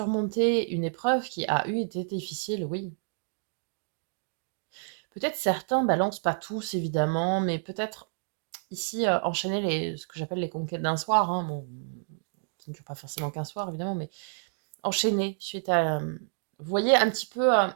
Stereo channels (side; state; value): left; silent; digital silence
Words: une épreuve qui a été difficile, oui. Peut-être certains balancent pas tous, évidemment, mais peut-être ici enchaîner ce que j'appelle les conquêtes d'un soir, hein, bon, qui ne dure pas forcément qu'un soir, évidemment, mais enchaîner suite à... vous voyez, un petit peu